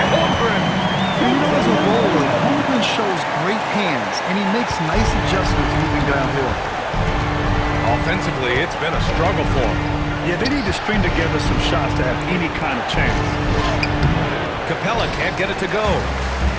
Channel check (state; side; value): identical; both; correlation 1.00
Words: Holmgren. You know, as a roller, Holmgren shows great hands, and he makes nice adjustments moving downhill. Offensively, it's been a struggle for him. Yeah, they need to string together some shots to have any kind of chance. Capella can't get it to go.